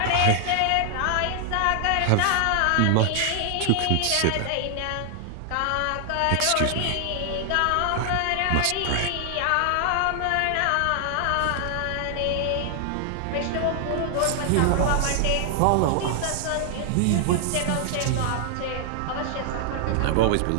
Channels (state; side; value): different; both; correlation 0.00